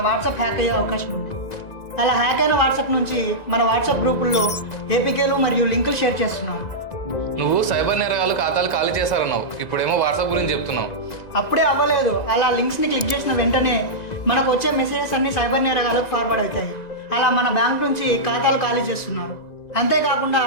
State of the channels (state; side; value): late; right; 1.9 ms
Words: వాట్సాప్ హ్యాక్ అయ్యే అవకాశం ఉంది. అలా హ్యాక్ అయిన వాట్సాప్ నుంచి మన వాట్సాప్ గ్రూపుల్లో ఏపీకేలు మరియు లింకులు షేర్ చేస్తున్నారు. నువ్వు సైబర్ నేరగాళ్ళు ఖాతాలు ఖాళీ చేశారన్నావు, ఇప్పుడేమో వాట్సాప్ గురించి చెప్తున్నావు. అప్పుడే అవ్వలేదు, అలా లింక్స్ని క్లిక్ చేసిన వెంటనే మనకు వచ్చే మెసేజెస్ అన్ని సైబర్ నేరగాలకు ఫార్వర్డ్ అవుతాయి. అలా మన బ్యాంక్ నుంచి ఖాతాలు ఖాళీ చేస్తున్నారు. అంతేకాకుండా